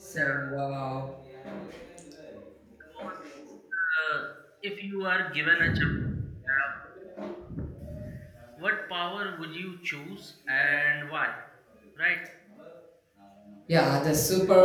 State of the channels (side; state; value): both; identical; correlation 1.00